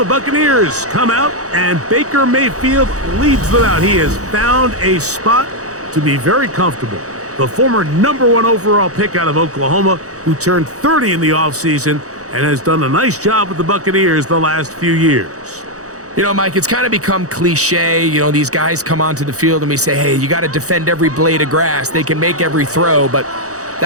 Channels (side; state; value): left; late; 0.66 ms